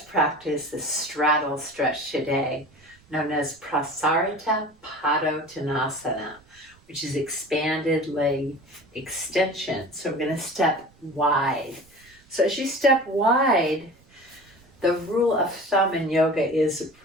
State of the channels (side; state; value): right; noise; rumble, 29 dB below the sound